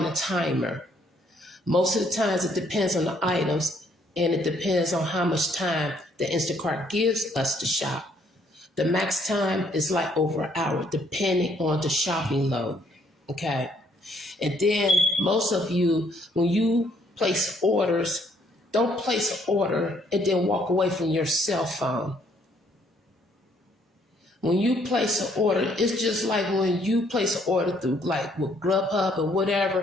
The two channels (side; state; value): both; normal; correlation 0.67